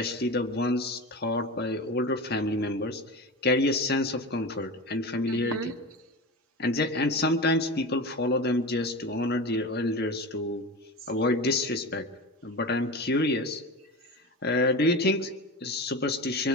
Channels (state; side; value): normal; both; correlation 0.27